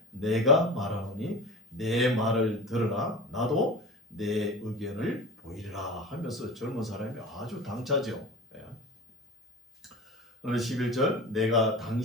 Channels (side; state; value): both; normal; correlation 0.33